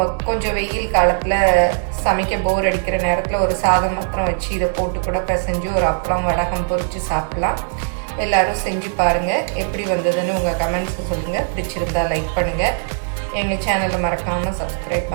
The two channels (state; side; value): silent; left; digital silence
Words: கொஞ்சம் வெயில் காலத்தில் சமைக்க போர் அடிக்கிற நேரத்தில் ஒரு சாதம் மாத்திரம் வச்சு இதை போட்டு கூட பிசைஞ்சு ஒரு அப்பளம் வடகம் பொரித்து சாப்பிட்லாம். எல்லோரும் செஞ்சு பாருங்கள். எப்படி வந்ததுன்னு உங்கள் கமெண்ட்ஸை சொல்லுங்கள். பிடிச்சிருந்தால் லைக் பண்ணுங்கள். எங்கள் சேனலை மறக்காமல் சப்ஸ்கிரைப்